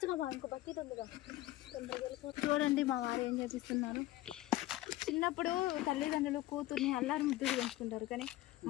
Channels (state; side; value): quieter; right; 16.3 dB